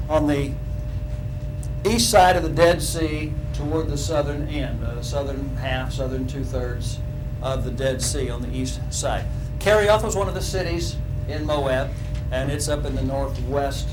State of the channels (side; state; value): both; identical; correlation 1.00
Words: on the east side of the Dead Sea toward the southern end, southern half, southern 2/3 of the Dead Sea on the east side. Kerioth was one of the cities in Moab, and it's up in the